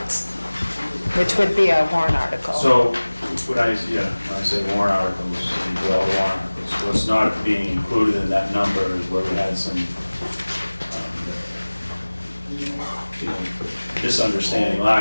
which would be a warrant article. So when I say warrant articles, we do all the warrant articles. What's not being included in that number is where we had some misunderstanding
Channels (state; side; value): inverted; both; correlation -1.00